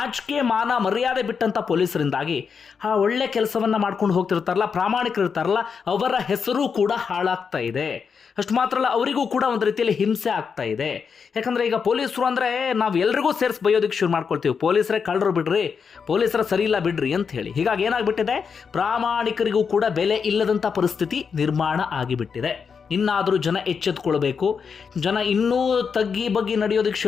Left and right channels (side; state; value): right; quieter; 6.1 dB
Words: ಮಾನ ಮರ್ಯಾದೆ ಬಿಟ್ಟಂಥ ಪೊಲೀಸರಿಂದಾಗಿ ಆ ಒಳ್ಳೆ ಕೆಲಸವನ್ನು ಮಾಡ್ಕೊಂಡು ಹೋಗ್ತಿರ್ತಾರಲ್ಲ, ಪ್ರಾಮಾಣಿಕರಿರ್ತಾರಲ್ಲ, ಅವರ ಹೆಸರು ಕೂಡ ಹಾಳಾಗ್ತಾ ಇದೆ. ಅಷ್ಟು ಮಾತ್ರ ಅಲ್ಲ, ಅವರಿಗೂ ಕೂಡ ಒಂದು ರೀತಿಯಲ್ಲಿ ಹಿಂಸೆ ಆಗ್ತಾ ಇದೆ. ಯಾಕಂದರೆ ಈಗ ಪೊಲೀಸರು ಅಂದರೆ ನಾವು ಎಲ್ರಿಗೂ ಸೇರಿಸಿ ಬೈಯೋದಕ್ಕೆ ಶುರು ಮಾಡ್ಕೊಳ್ತೀವಿ. ಪೊಲೀಸರೇ ಕಳ್ಳರು ಬಿಡ್ರಿ, ಪೊಲೀಸರ ಸರಿ ಇಲ್ಲ ಬಿಡ್ರಿ ಅಂತ ಹೇಳಿ. ಹೀಗಾಗಿ ಏನಾಗ್ಬಿಟ್ಟಿದೆ, ಪ್ರಾಮಾಣಿಕರಿಗೂ ಕೂಡ ಬೆಲೆ ಇಲ್ಲದಂಥ ಪರಿಸ್ಥಿತಿ ನಿರ್ಮಾಣ ಆಗಿಬಿಟ್ಟಿದೆ. ಇನ್ನಾದರೂ ಜನ ಎಚ್ಚೆತ್ಕೊಳ್ಬೇಕು. ಜನ ಇನ್ನೂ ತಗ್ಗಿ ಬಗ್ಗಿ ನಡೆಯೋದಕ್ಕೆ